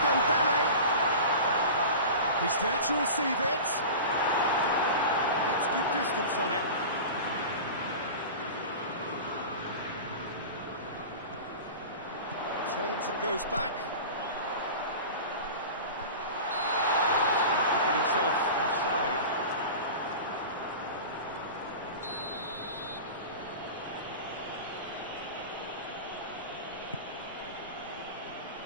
He's there to receive it. Gets good distance on it. Turns and goes back. He's going to get himself offside.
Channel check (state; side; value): inverted; both; correlation -0.33